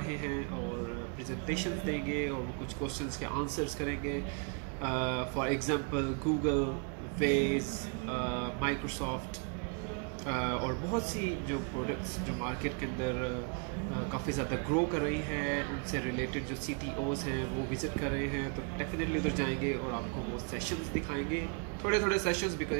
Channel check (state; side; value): quieter; left; 37.8 dB